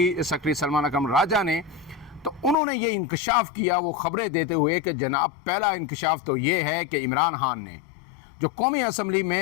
सेक्रेटरी सलमान अकबर राजा ने, तो उन्होंने ये इंकशाफ किया वो खबरें देते हुए कि जनाब पहला इंकशाफ तो ये है कि इमरान खान ने जो कौमी असम्बली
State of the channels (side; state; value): right; drops out; at 2.6 s